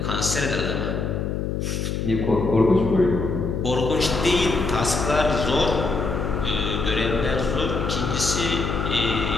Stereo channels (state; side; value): noise; left; hum, 2 dB below the sound